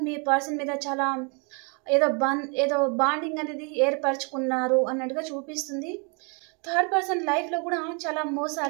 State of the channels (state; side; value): quieter; left; 35.4 dB